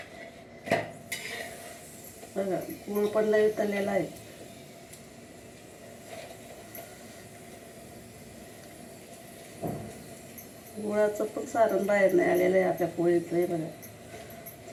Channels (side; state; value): both; identical; correlation 1.00